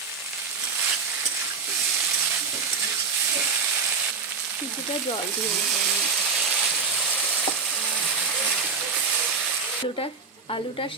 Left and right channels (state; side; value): quieter; left; 5.1 dB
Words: কিছুটা জল দিয়ে দেবো। আলুটা